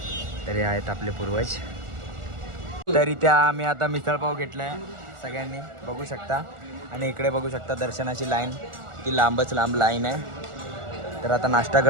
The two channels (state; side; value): late; left; 1.4 ms